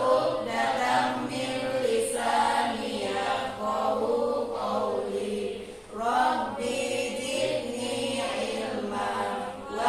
min lisani yafqahu qawli. Rabbi zidni ilma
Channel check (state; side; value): identical; both; correlation 1.00